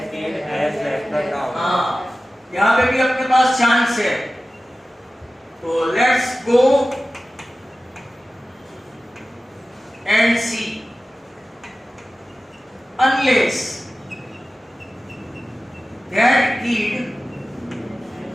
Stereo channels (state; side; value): normal; both; correlation 0.95